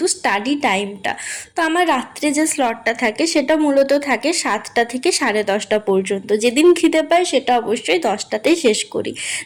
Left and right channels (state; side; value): identical; both; correlation 1.00